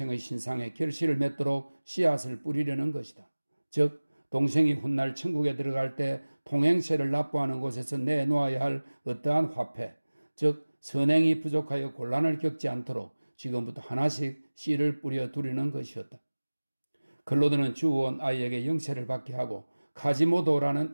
신상에 결실을 맺도록 씨앗을 뿌리려는 것이다. 즉 동생이 훗날 천국에 들어갈 때 통행세를 납부하는 곳에서 내놓아야 할 어떠한 화폐, 즉 선행이 부족하여 곤란을 겪지 않도록 지금부터 하나씩 씨를 뿌려 두려는 것이었다. 클로드는 주워온 아이에게 영세를 받게 하고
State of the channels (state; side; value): inverted; both; correlation -1.00